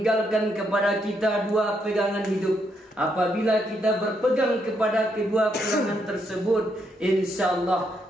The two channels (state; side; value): normal; both; correlation 0.77